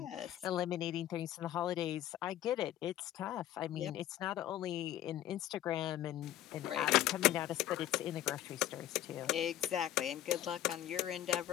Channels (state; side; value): quieter; right; 12.7 dB